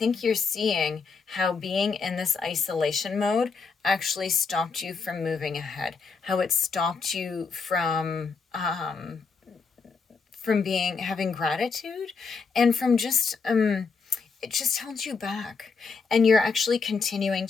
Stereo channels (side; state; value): right; quieter; 5.0 dB